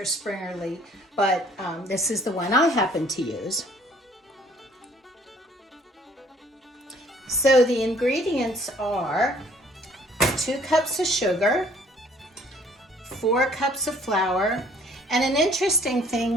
Springerle, but this is the one I happen to use. So the ingredients are 2 cups of sugar, 4 cups of flour, and an interesting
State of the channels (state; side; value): normal; both; correlation 0.58